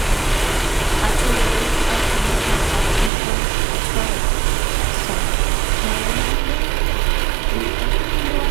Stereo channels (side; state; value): left; drops out; at 3.1 s